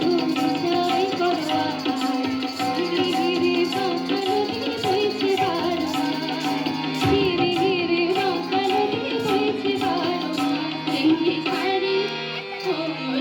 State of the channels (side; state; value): both; identical; correlation 1.00